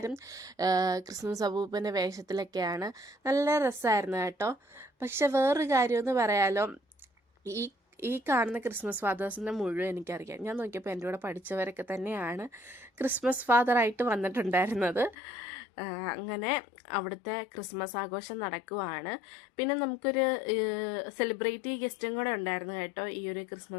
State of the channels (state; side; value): drops out; right; at 15.2 s